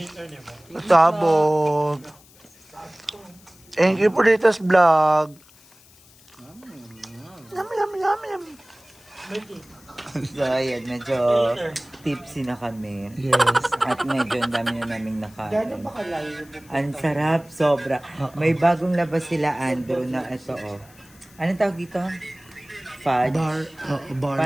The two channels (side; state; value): left; noise; hiss, 26 dB below the sound